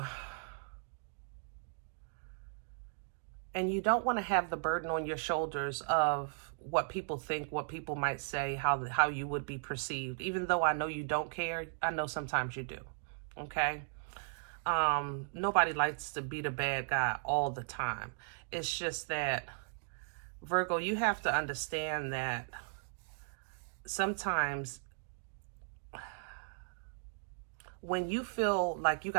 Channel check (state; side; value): silent; left; digital silence